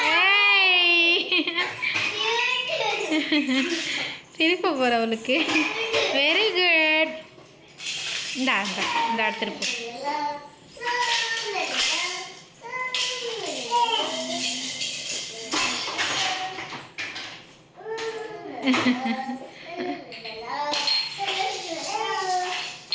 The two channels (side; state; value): both; identical; correlation 1.00